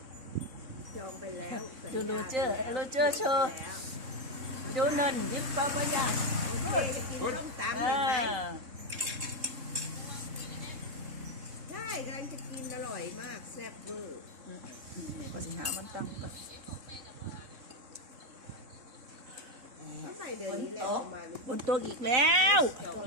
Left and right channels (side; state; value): left; late; 3.6 ms